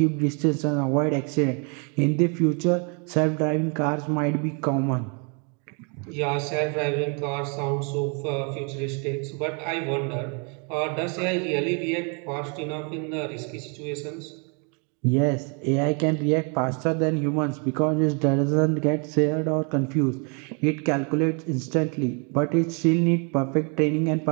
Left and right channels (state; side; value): quieter; left; 36.6 dB